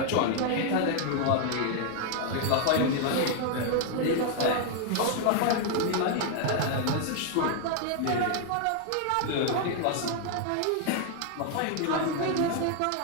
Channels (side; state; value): both; different; correlation 0.00